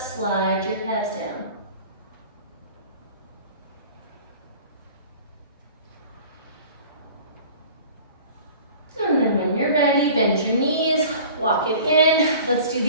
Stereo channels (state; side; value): inverted; both; correlation -0.44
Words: your calves down. And then when you're ready, bend your knees, walk it in. Let's do